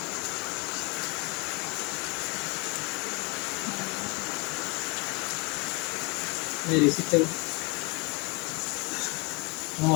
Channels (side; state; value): right; quieter; 29.9 dB